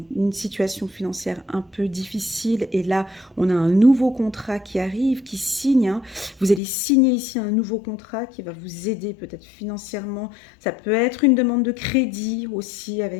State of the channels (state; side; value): drops out; right; at 6.6 s